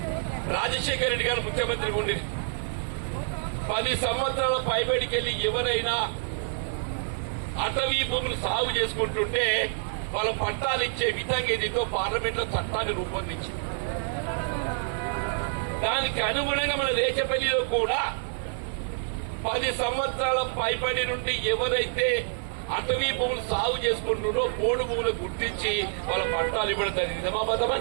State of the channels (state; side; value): silent; left; digital silence